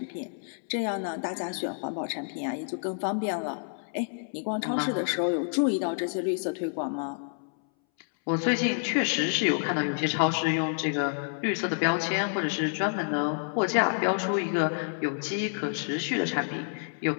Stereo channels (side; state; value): right; silent; 59 dB below the other